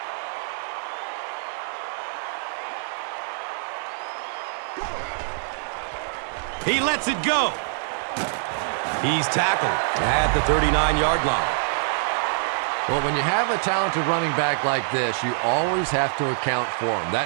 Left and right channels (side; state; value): left; silent; digital silence